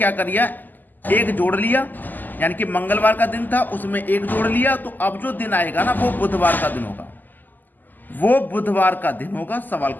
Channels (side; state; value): right; late; 0.086 ms